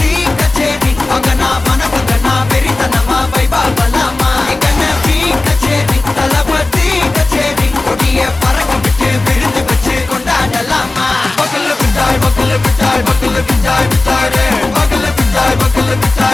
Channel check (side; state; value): right; quieter; 3.1 dB